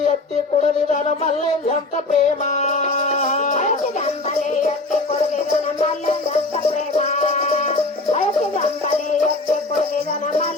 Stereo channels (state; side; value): quieter; right; 3.1 dB